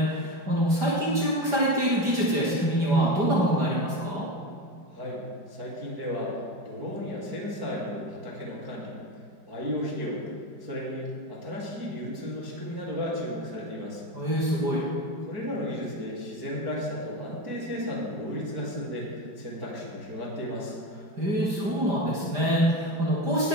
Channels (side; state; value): left; late; 5.0 ms